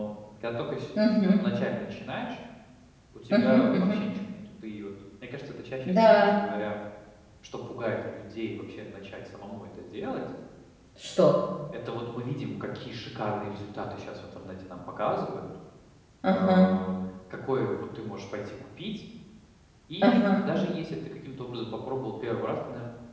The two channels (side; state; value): both; identical; correlation 1.00